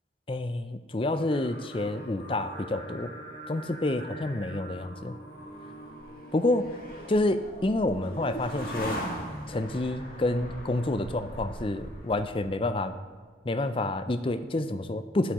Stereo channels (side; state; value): both; normal; correlation 0.63